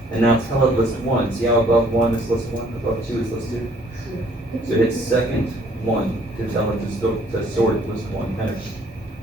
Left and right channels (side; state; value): both; normal; correlation 0.61